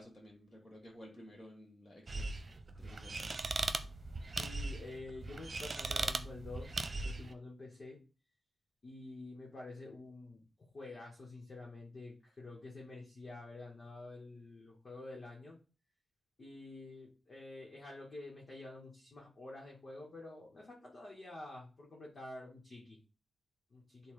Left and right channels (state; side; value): normal; both; correlation 0.90